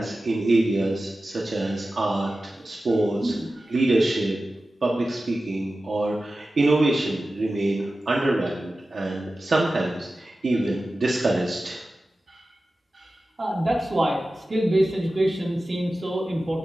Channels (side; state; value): both; normal; correlation 0.95